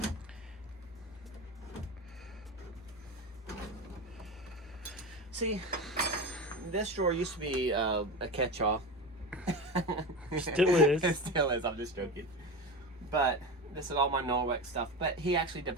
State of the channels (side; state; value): both; normal; correlation 0.24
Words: See, this drawer used to be a catch-all. Still is. It still is, I'm just joking. But this is all my Norwex stuff. But he actually